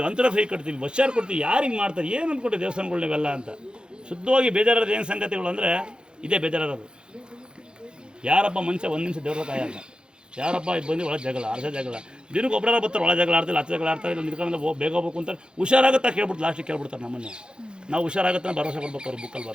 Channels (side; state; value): left; late; 0.049 ms